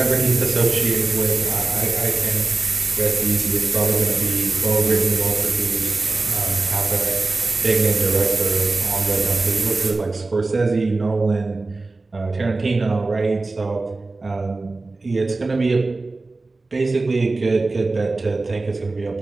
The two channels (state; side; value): quieter; left; 3.4 dB